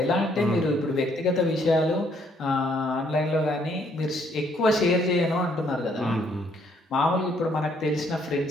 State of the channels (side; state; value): both; normal; correlation 0.68